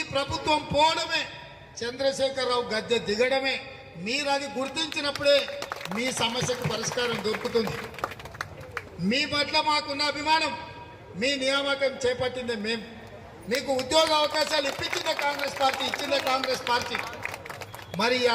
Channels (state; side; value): identical; both; correlation 1.00